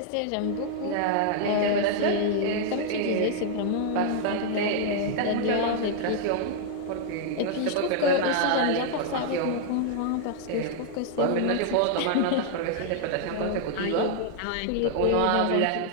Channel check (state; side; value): different; both; correlation 0.00